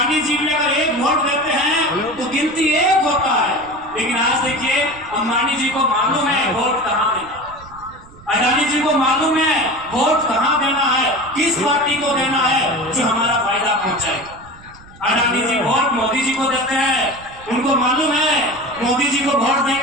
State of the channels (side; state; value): right; noise; rumble, 22 dB below the sound